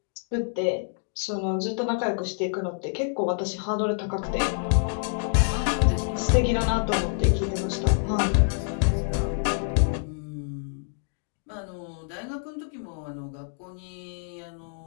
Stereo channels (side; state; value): right; silent; digital silence